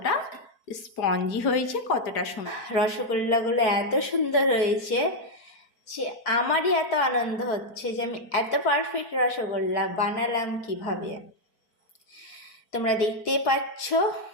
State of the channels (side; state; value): right; late; 4.5 ms